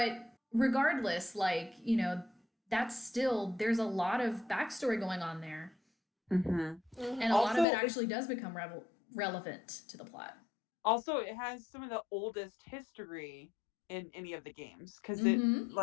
regardless, like, you know, that's still, there's a lot of backstory going on there. And a lot of it actually does become relevant to the plot. Also, it has some of the oldest history in any of the games, because it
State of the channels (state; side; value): drops out; right; at 7.7 s